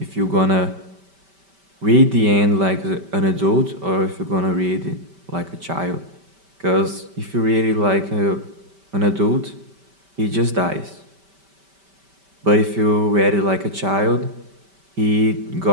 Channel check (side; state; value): left; late; 5.1 ms